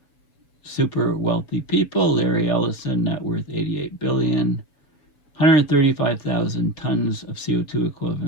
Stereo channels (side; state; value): right; late; 7.0 ms